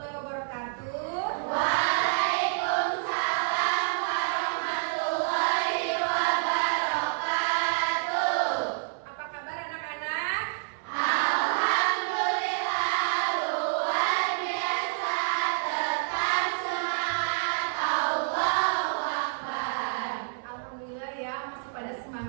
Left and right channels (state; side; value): silent; left; 59 dB below the other